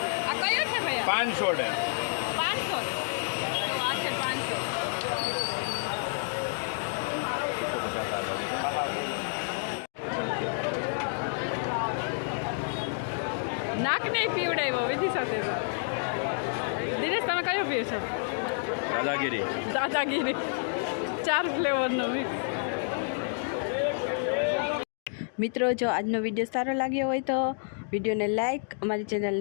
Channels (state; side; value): silent; right; digital silence